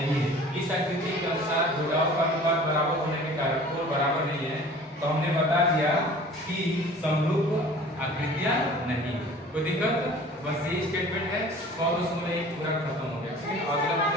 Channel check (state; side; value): normal; both; correlation 0.46